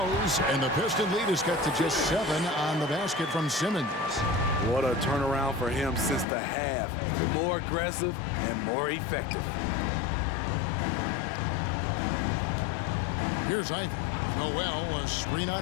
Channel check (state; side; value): drops out; right; at 6.2 s